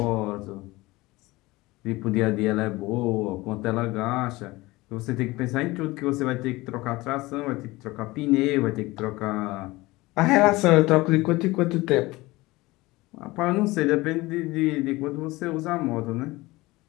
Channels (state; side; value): quieter; right; 20.6 dB